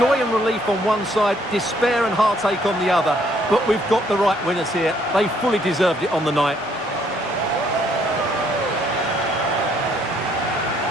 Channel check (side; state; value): both; normal; correlation 0.67